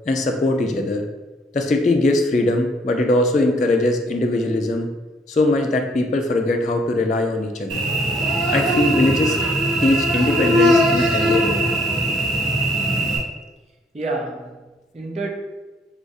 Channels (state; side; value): normal; both; correlation 0.65